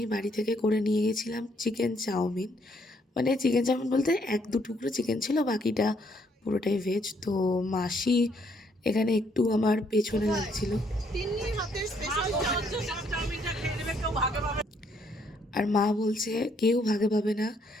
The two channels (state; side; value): normal; both; correlation 0.70